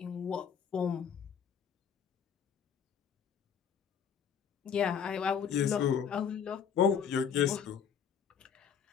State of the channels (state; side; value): quieter; right; 7.5 dB